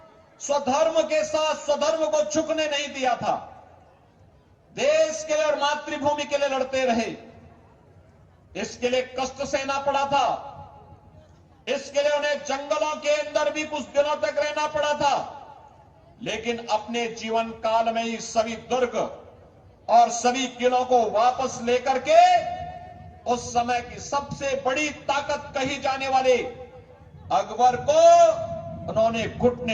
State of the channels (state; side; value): identical; both; correlation 1.00